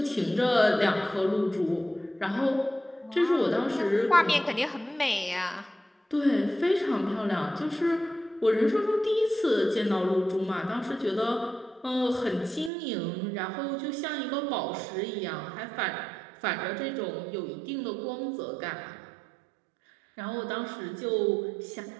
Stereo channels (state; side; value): drops out; left; at 12.7 s